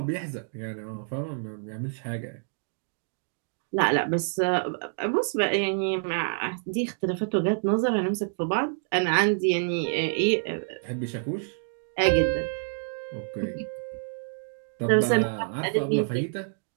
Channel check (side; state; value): left; silent; digital silence